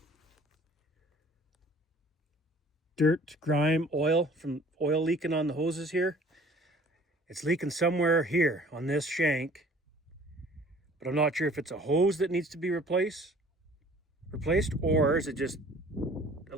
dirt, grime, oil from oil leaking on the hoses here. It's leaking somewhere here on this shank, but I'm not sure if it's a hose that needs to be replaced, or is it just a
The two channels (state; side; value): normal; both; correlation 0.51